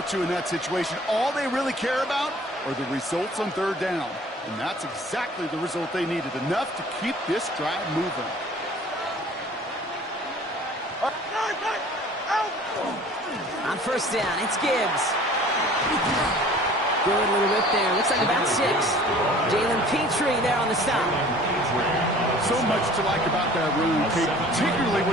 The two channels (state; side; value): normal; both; correlation 0.49